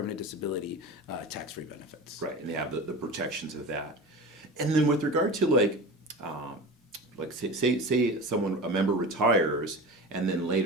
disability, tax-free benefits. Right, and they have the protections of that. And then with regard to say a member retires, and then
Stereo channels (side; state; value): both; normal; correlation 0.31